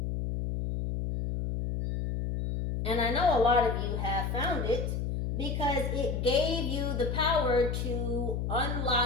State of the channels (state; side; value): noise; left; hum, 2 dB below the sound